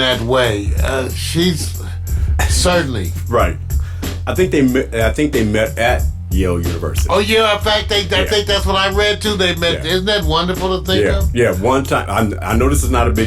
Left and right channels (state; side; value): identical; both; correlation 1.00